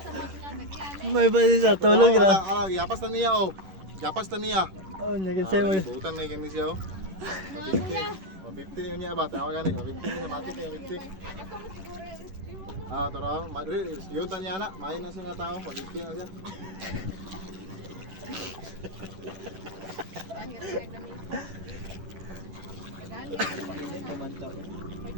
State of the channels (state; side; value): late; left; 11 ms